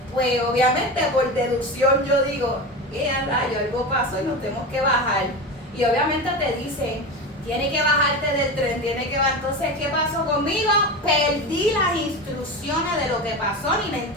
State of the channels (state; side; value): normal; both; correlation 0.24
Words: pues obviamente por deducción yo digo, rayo, algo pasó y nos tenemos que bajar. Y obviamente te dicen, tiene que bajarte del tren, tiene que bajar. Entonces, ¿qué pasó conmigo? Perdí las instrucciones de lo que pasó, ni me